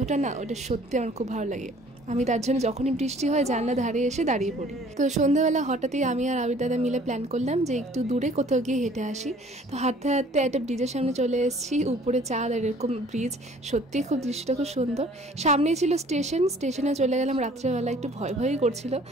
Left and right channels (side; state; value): both; normal; correlation 0.54